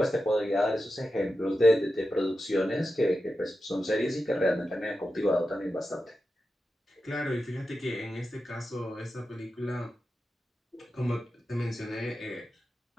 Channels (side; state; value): both; normal; correlation 0.91